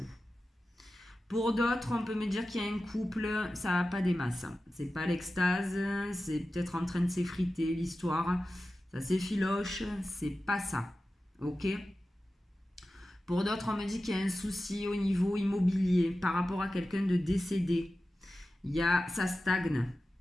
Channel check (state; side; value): normal; both; correlation 0.94